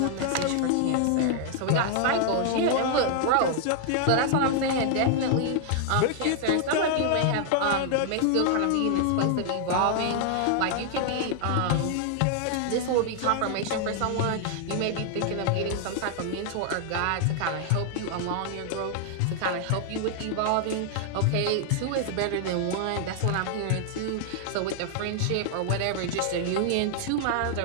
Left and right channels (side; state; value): both; different; correlation 0.00